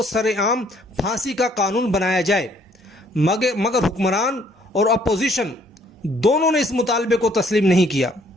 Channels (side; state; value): both; normal; correlation 0.63